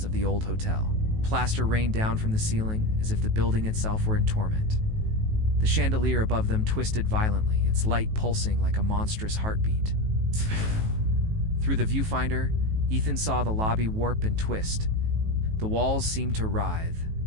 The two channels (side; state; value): left; late; 18 ms